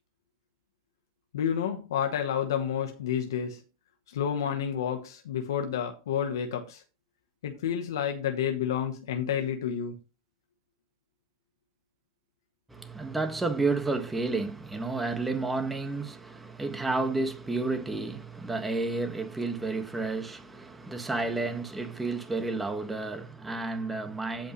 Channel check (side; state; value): both; normal; correlation 0.25